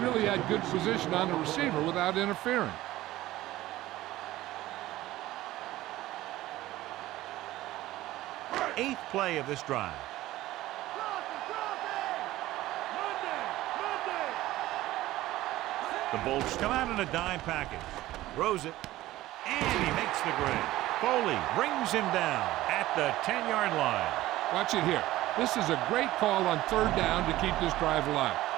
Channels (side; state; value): left; quieter; 16.2 dB